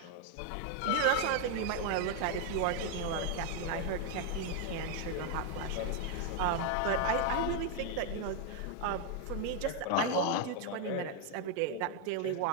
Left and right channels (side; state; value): both; different; correlation 0.01